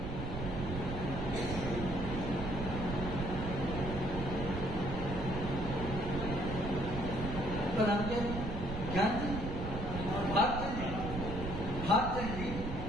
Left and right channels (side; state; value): right; noise; rumble, 6 dB below the sound